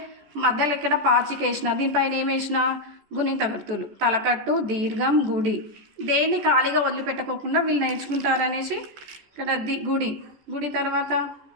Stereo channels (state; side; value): late; left; 14 ms